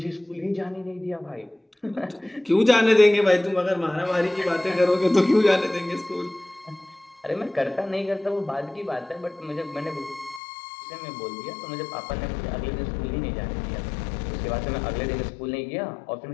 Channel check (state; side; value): drops out; right; at 10.4 s